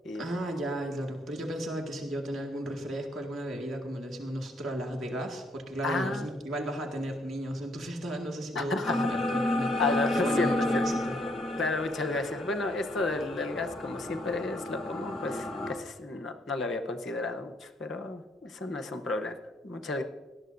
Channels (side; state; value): both; normal; correlation 0.69